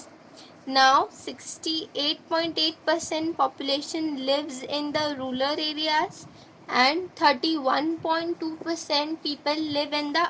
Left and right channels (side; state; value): both; identical; correlation 1.00